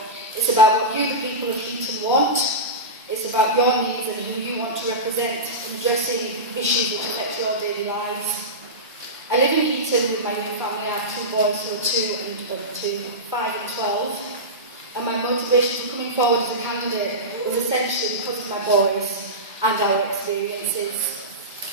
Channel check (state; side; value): normal; both; correlation -0.16